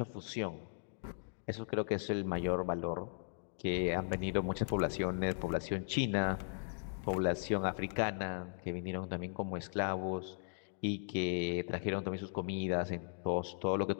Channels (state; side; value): silent; right; digital silence